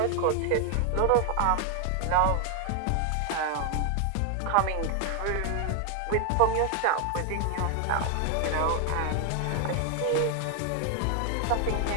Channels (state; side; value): different; both; correlation 0.00